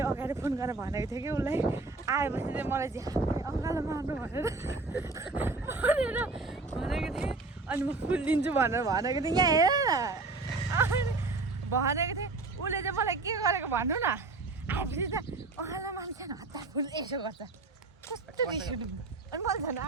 अगाडि फोन गरेर भनेको थिएँ कि उसलाई आएपछि चाहिँ मलाई चाहिँ अङ्गालो मार्नु भनेर भनेको थिएँ अनि म फुल दिन्छु भनेर भनेको थिएँ यहाँ हेर न भनेको थिएँ उसले चाहिँ मलाई के गरेको भन्नु न आएपछि त अङ्गालो मान्छे हतार फुल यसो गर्छ कस्तो रिस उठ्यो अनि मैले झन्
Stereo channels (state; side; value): quieter; left; 3.6 dB